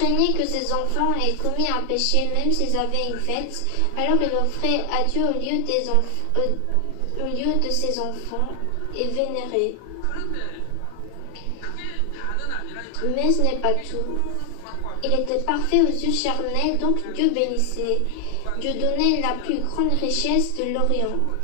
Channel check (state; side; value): different; both; correlation 0.00